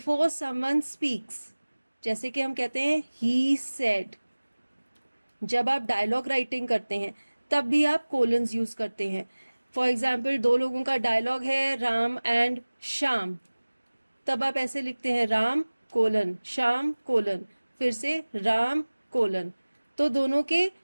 someone speaks. जैसे कि हम कहते हैं ही सेड. जब आप डायलॉग राइटिंग करते हैं तब भी आप कोलन्स यूज करते हैं. फॉर एग्जाम्पल दो लोगों का डायलॉग है राम एंड श्याम, तब आप ऐसे लिखते हैं राम कोलन श्याम कोलन, फिर से राम कोलन. तो दोनों के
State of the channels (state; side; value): inverted; both; correlation -1.00